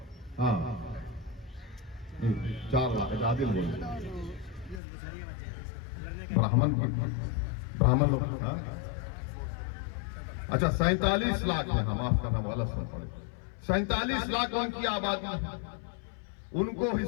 हाँ 4 लाख आदिल बोल ब्राह्मण लोग, हाँ? अच्छा 47 लाख है, हम माफ करना गलत सुन पड़े, 47 लाख उनकी आबादी है। उनको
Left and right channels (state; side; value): drops out; right; at 4.8 s